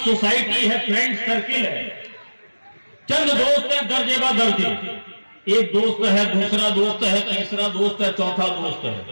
سوسائٹی ہے، فرینڈ سرکل ہے، چند دوست ہیں درجے با درجے، ایک دوست ہے، دوسرا دوست ہے، تیسرا دوست ہے، چوتھا دوست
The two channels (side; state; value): both; inverted; correlation -1.00